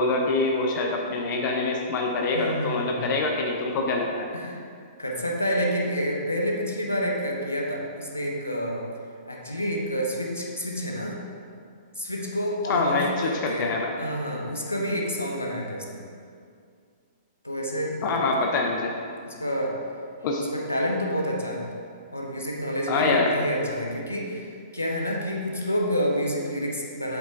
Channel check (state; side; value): inverted; both; correlation -0.45